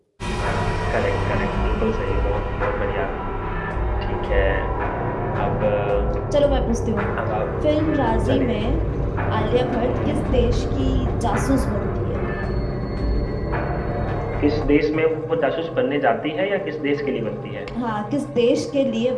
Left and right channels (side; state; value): both; identical; correlation 1.00